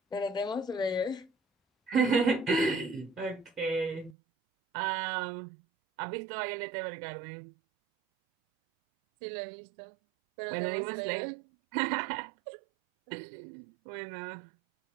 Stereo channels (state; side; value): drops out; left; at 4.2 s